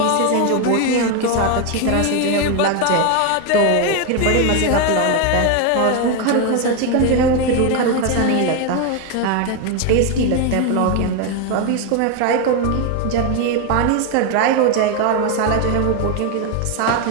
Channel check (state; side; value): different; both; correlation 0.01